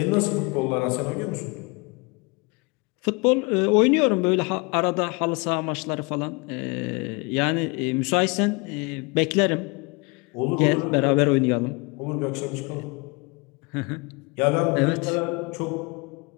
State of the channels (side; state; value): right; quieter; 28.8 dB